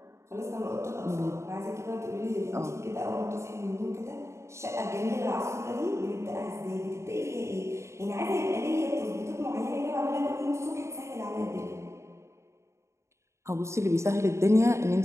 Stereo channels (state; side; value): late; left; 0.14 ms